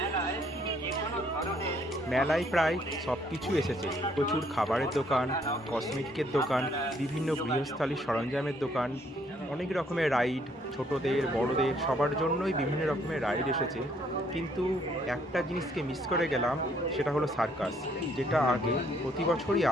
মেলায় প্রায় সব কিছু এসেছে। প্রচুর খাবারের দোকান, কসমেটিকের দোকান, বিভিন্ন গৃহস্থালির সরঞ্জামের দোকান, অনেক রকমের রাইড, ছোটদের বড়দের সবার জন্যই বিভিন্ন রকমের রাইড এসেছে। কিন্তু একটা জিনিসকে মিস করে গেলাম, সেটা হলো সার্কাস, যেটা আগে প্রতি বছরই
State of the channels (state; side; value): normal; both; correlation 0.66